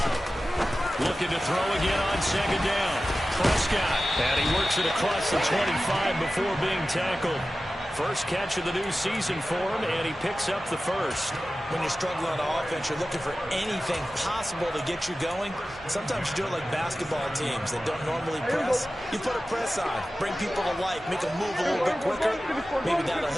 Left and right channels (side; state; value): both; normal; correlation 0.95